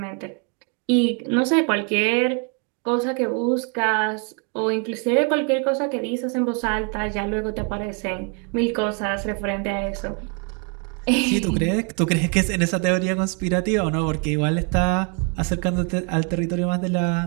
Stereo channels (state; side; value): quieter; left; 36.1 dB